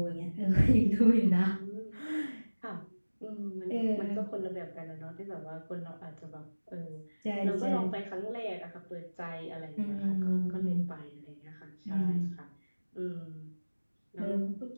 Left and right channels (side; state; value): both; inverted; correlation -1.00